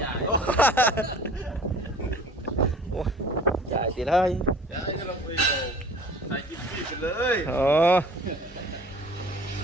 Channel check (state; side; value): normal; both; correlation 0.46